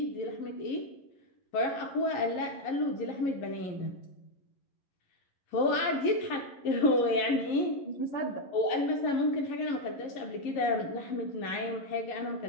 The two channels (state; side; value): late; right; 11 ms